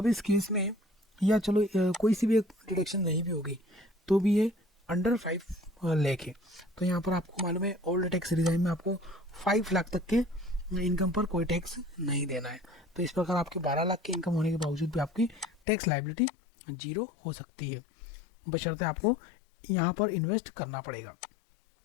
इस केस में या चलो कोई सी भी एक डिडक्शन नहीं भी होगी तो भी ये अंडर 5 लाख है। तो यहाँ पर आपको मालूम है ओल्ड टैक्स रिजाइम में आपको 5 लाख तक के इनकम पर कोई टैक्स नहीं देना है। तो इस प्रकार आपके 12 लाख की इनकम होने के बावजूद भी आपकी टैक्स लायबिलिटी 0 हो सकती है, बशर्ते आपको यहाँ पर इन्वेस्ट करना पड़ेगा।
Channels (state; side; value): drops out; right; at 15.6 s